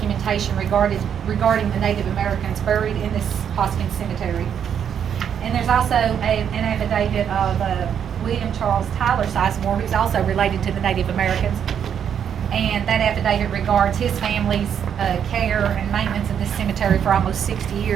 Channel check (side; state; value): left; quieter; 8.4 dB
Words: regarding the Native Americans buried in this Hoskins Cemetery. And there's also an affidavit of William Charles Tyler Sizemore, who's also related to the Native Americans. And that affidavit regards his family's care and maintenance of this cemetery for almost 60